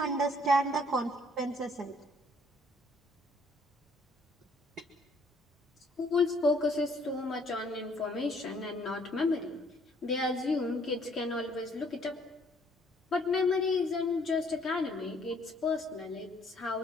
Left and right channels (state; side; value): normal; both; correlation 0.63